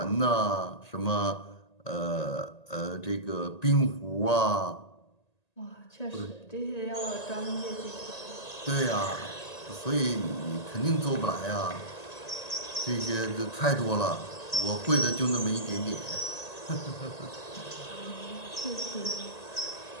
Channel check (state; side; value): late; right; 1.8 ms